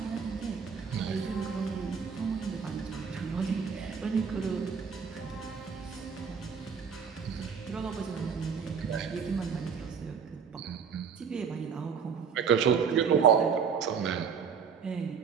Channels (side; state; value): left; quieter; 6.5 dB